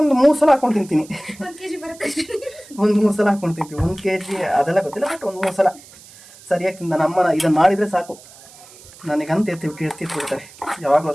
3 ಸಲ ಹಾಕೊಂಡು ತಿಂತೀನಿ. 1 3 ಸಲ ಹಾಕೊಂಡು ತಿಂತೀವಿ. 1 kg ಅದೆಲ್ಲ ಗೊತ್ತಿಲ್ಲ, ಬಟ್ ಒಂದು 3 ಸಲ ಸರಿಯಾಗಿ ತಿಂದ. ನಮ್ಮನ ಇದನ್ನು ಮಾಡಿದರೆ ಸಾಕು, ನನಗಂತ ಎತ್ತಿಟ್ಬಿಡ್ತಾರೆ ಯಾವಾಗಲೂ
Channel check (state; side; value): noise; right; hiss, 22 dB below the sound